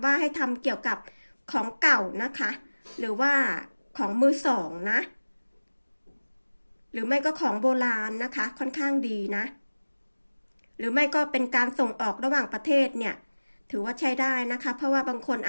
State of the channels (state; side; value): inverted; both; correlation -1.00